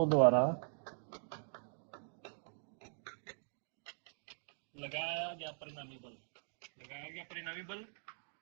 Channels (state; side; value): silent; left; digital silence